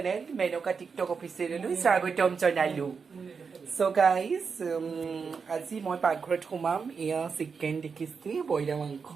Menoka TikTok official. Swagotom janailo. So guys, আজি মই পাকঘৰত সোমাম ইয়া চিকেন দেখিছি বইলা মাংস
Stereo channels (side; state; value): left; quieter; 5.5 dB